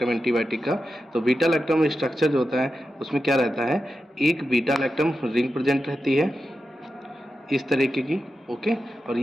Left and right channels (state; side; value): normal; both; correlation 0.90